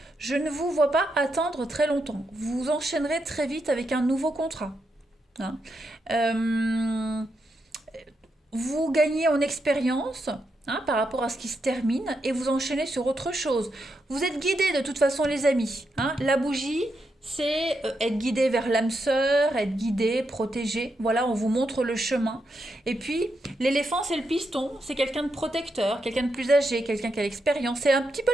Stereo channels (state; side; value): normal; both; correlation 0.83